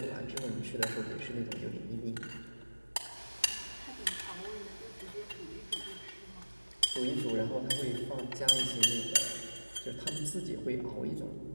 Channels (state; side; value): inverted; both; correlation -1.00